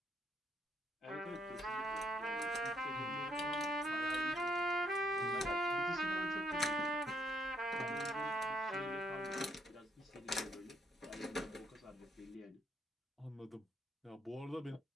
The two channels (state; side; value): normal; both; correlation 0.72